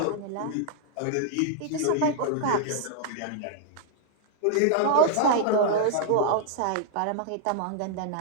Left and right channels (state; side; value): different; both; correlation -0.01